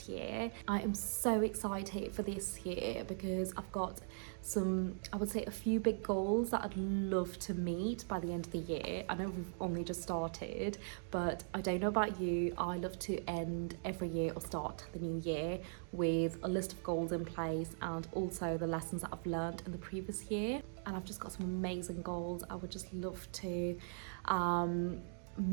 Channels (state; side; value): silent; left; digital silence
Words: year. I am so excited for this year because I've got I would say a few big goals that I'd love to meet by the end of the year. I know we've only just started, but I don't know about you, I love to end every year or start the new year with a list of goals in place and also the lessons that I've learned in the previous year. And I've just got some amazing goals I would just love to